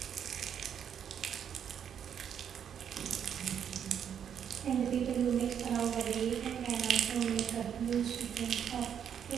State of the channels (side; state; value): left; quieter; 8.5 dB